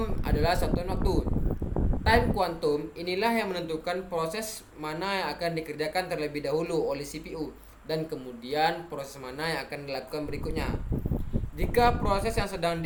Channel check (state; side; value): identical; both; correlation 1.00